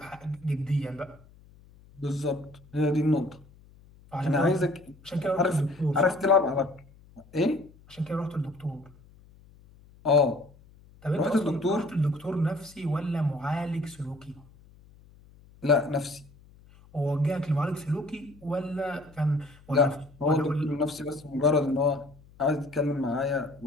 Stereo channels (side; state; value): left; noise; hum, 25 dB below the sound